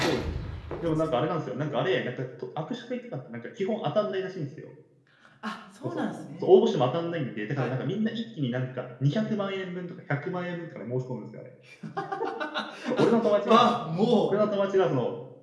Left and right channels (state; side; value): identical; both; correlation 1.00